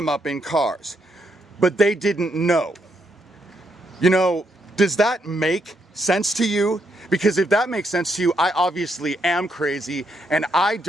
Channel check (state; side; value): normal; both; correlation 0.77